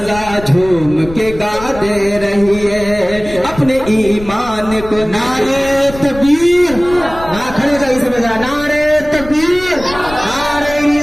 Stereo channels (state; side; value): noise; left; rumble, 14 dB below the sound